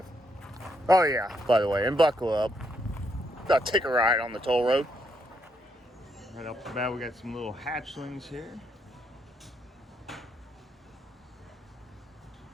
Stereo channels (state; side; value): normal; both; correlation 0.76